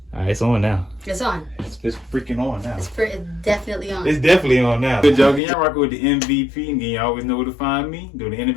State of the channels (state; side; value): drops out; right; at 5.4 s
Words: Alright, it's on now. It's on. It's freaking on now. It's definitely on. It's definitely on now. Good job. Y'all rocking with the MVP. And you always know where to find me. Do the